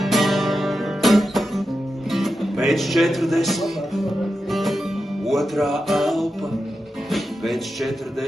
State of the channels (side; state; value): both; normal; correlation 0.89